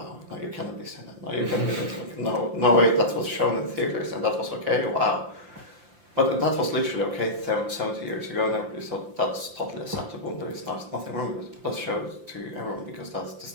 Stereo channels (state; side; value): late; left; 5.8 ms